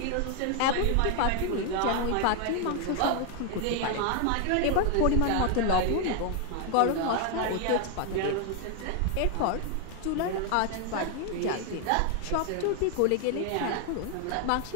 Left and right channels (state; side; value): different; both; correlation 0.01